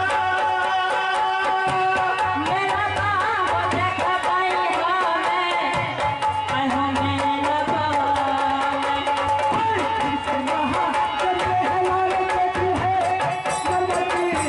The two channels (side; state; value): both; identical; correlation 1.00